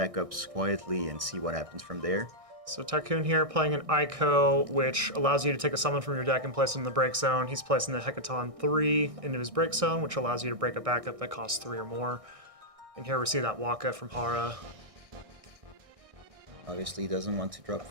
quietly and see what happens from there. So Tycoon here playing an Ico, which allows you to take a summon from your deck and place it in the break zone. He's placing the Hecaton 3 into his break zone, which allows you to break a backup that costs 3 or more. And here we see that Waka from Hara. Obviously, he doesn't want to drop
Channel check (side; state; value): left; late; 1.6 ms